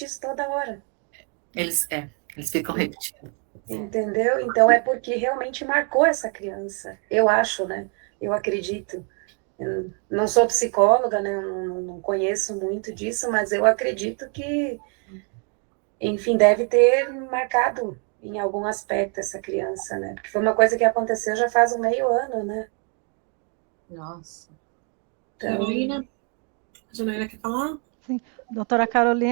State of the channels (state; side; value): quieter; left; 39.0 dB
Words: isso toda hora. Eles ficam repetindo. Entendeu? Então é porque realmente marcou essa criança. Eu acho, né? Eu acredito. Eu não sou psicóloga, né? Eu não conheço muito disso, mas eu acredito que, enfim, deve ter marcado em algum aspecto essa criança, né? Porque foi uma coisa que aconteceu já faz um meio ano, né? Nossa. Então, Carolina? A Janaína quer falar? Doutora